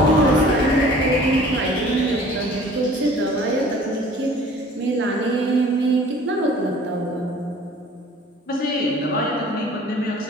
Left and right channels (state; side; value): normal; both; correlation 0.49